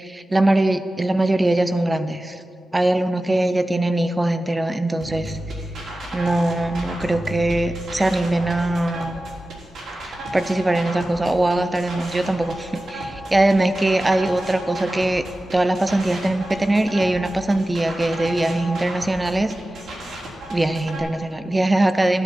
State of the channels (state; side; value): normal; both; correlation 0.95